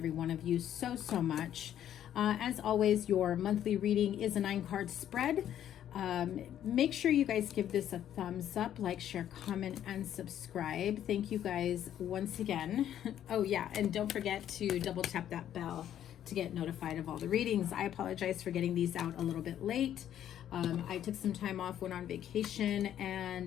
one of you so much. As always, your monthly reading is a 9-card spread. Make sure you guys give this a thumbs up, like, share, comment, and subscribe. Thank you guys once again. Oh yeah, and don't forget to double tap that bell to get notified of all the readings. I apologize for getting these out a little bit late. I took some time off, went on vacation,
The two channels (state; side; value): quieter; right; 10.8 dB